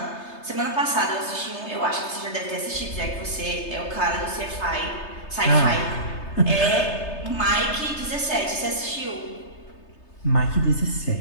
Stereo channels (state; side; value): late; right; 3.3 ms